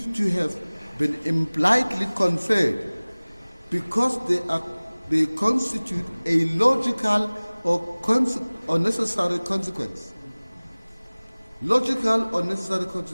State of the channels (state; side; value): inverted; both; correlation -1.00